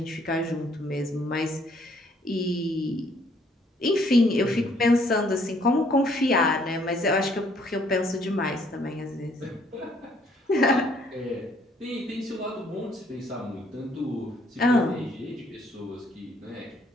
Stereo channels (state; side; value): normal; both; correlation 0.65